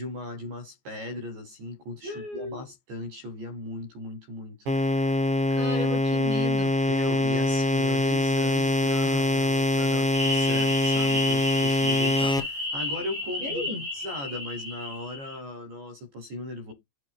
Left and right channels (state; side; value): late; left; 14 ms